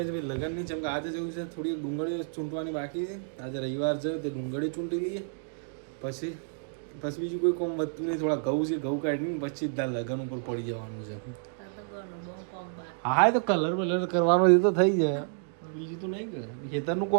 છે ભાઈ લગ્નની. જેમ કે આજે જેવું છે થોડી ડુંગળી ચૂંટવાની બાકી છે. આજે રવિવાર છે તે ડુંગળી ચૂંટી લઈએ, પછી બીજું કોઈ કોમ વધતું નહીં. થોડા ઘઉં છે, ઘઉં કાઢીને પછી જ લગ્ન ઉપર પડી જવાનું છે. હા તો કલર વલર કરવાનો એ તો થઈ જાય, બીજું તો નહીં કરે. ખેતરનું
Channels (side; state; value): left; silent; digital silence